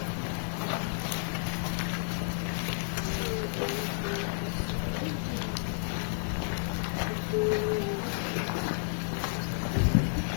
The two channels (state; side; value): silent; right; 57 dB below the other